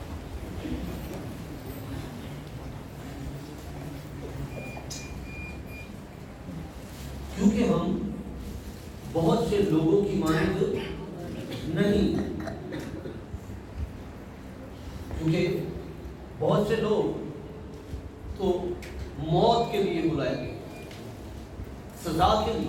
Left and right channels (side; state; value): both; identical; correlation 1.00